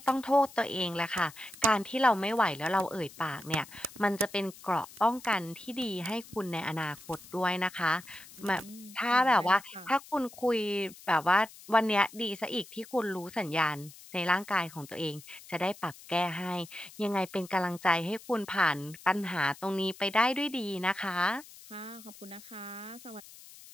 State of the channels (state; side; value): noise; left; hiss, 19 dB below the sound